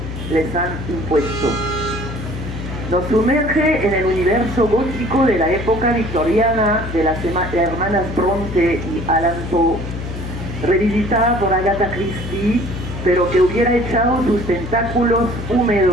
les han impuesto. Nos sumerge en el universo gótico de la época victoriana de las hermanas Bronte y Allan Poe, revisitada por Agatha Christie, pero que hubiera echado sus tentáculos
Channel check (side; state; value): left; noise; hum, 7 dB below the sound